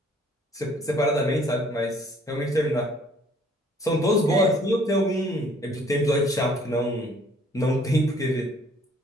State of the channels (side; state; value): both; normal; correlation 0.59